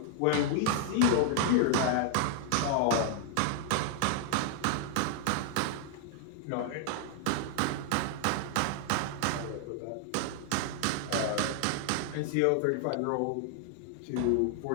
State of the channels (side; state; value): both; different; correlation 0.00